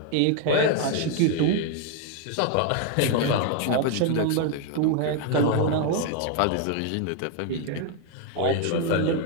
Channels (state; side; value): different; both; correlation 0.01